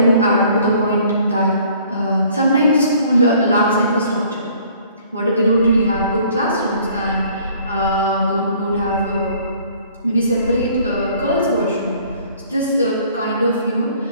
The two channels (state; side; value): inverted; both; correlation -0.56